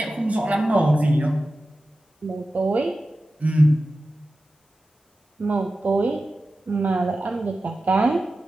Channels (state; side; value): normal; both; correlation 0.94